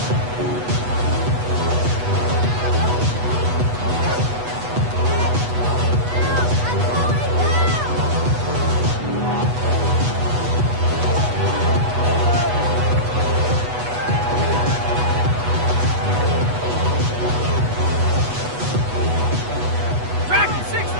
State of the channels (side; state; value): left; late; 8.2 ms